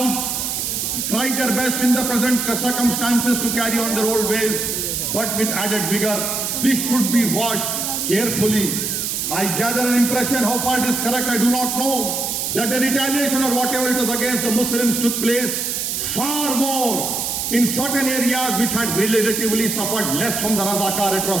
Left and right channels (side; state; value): right; noise; hiss, 1 dB below the sound